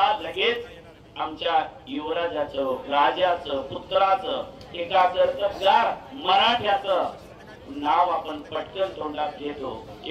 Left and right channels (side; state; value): both; identical; correlation 1.00